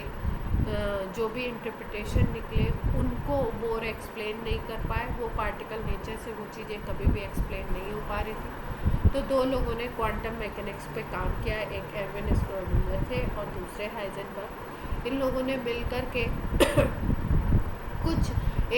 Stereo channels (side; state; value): both; identical; correlation 1.00